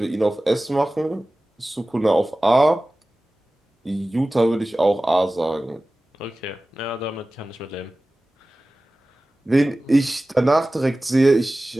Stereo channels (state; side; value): normal; both; correlation 0.97